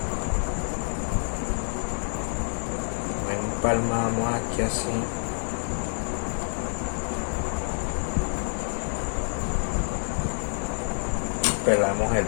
Empalmamos aquí así. Pelamos el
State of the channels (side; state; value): right; silent; 60 dB below the other